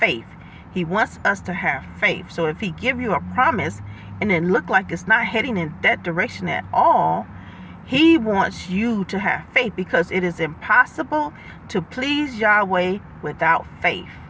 He wants us to have faith. So if he give you a promise and it look like it's not heading in that direction at all, he wants you to have faith, because it is impossible to please Yahweh without faith.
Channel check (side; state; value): both; identical; correlation 1.00